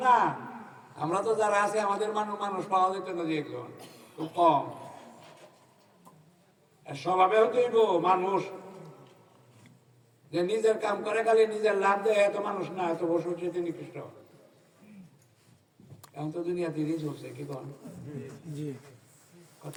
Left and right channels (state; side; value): identical; both; correlation 1.00